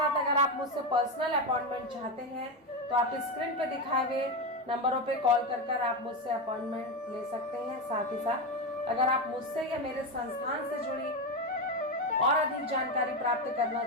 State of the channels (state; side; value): normal; both; correlation 0.13